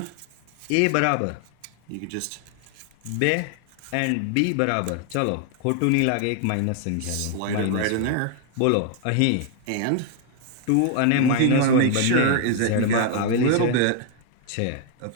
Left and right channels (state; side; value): different; both; correlation 0.00